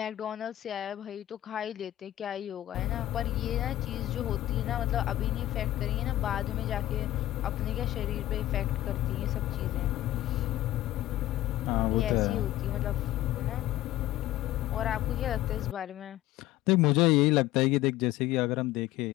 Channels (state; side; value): quieter; right; 14.8 dB